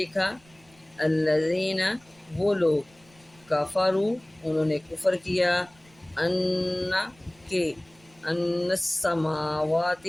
الذین، وہ لوگ، کفروا، انہوں نے کفر کیا، ان، کہ، ان السماوات،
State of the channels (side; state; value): right; noise; rumble, 30 dB below the sound